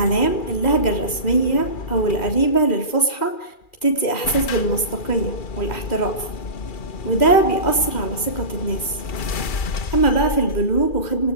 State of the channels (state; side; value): late; right; 2.4 ms